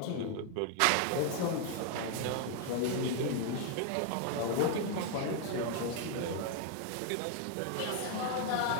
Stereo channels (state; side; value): different; both; correlation 0.00